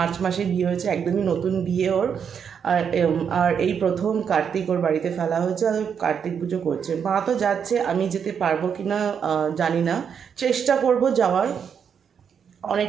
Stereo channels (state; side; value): quieter; left; 7.3 dB